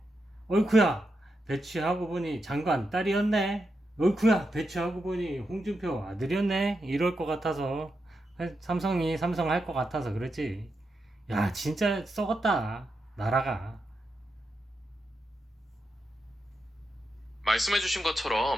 어이쿠야, 배치하고 보니 장관 딸이었네. 어이쿠야, 배치하고 보니 홍준표 아들이었네. 이럴 것 같아서 삼성이 삼성 할 것 같아서 그랬지. 야, 진짜 썩었다 나라가. 말씀해주신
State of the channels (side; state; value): both; normal; correlation 0.86